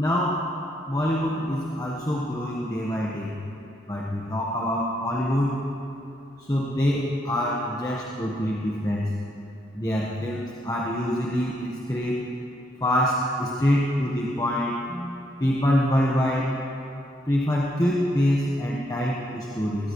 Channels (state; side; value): normal; both; correlation 0.75